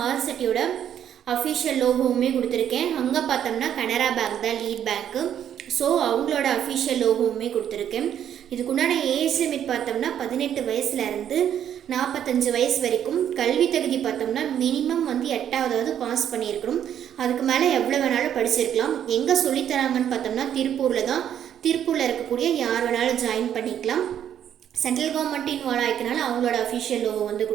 ஆர்செட்டியோட அஃபிஷியல் லோகோவுமே கொடுத்துருக்கேன். அங்கே பார்த்தோம்னா கனரா பேங்க் தான் லீட் பேங்க்கு. ஸோ அவங்களோட அஃபிஷியல் லோகோவுமே கொடுத்துருக்கேன். இதுக்குண்டான ஏஜ் லிமிட் பார்த்தோம்னா 18 வயசுலேருந்து 45 வயசு வரைக்கும். கல்வி தகுதி பார்த்தோம்னா மினிமம் 8வது பாஸ் பண்ணியிருக்கணும். அதுக்கு மேலே எவ்வளோ வேணாலும் படிச்சிருக்கலாம். எங்கே சொல்லித்தராங்கன்னு பார்த்தோம்னா திருப்பூரில் தான். திருப்பூரில் இருக்கக்கூடிய யார் வேணாலும் ஜாயின் பண்ணிக்கலாம். சென்ட்ரல் கவர்மெண்ட் இன்வால்வ் ஆகிக்கனால அவங்களோட அஃபிஷியல் லோகோ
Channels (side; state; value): left; quieter; 9.8 dB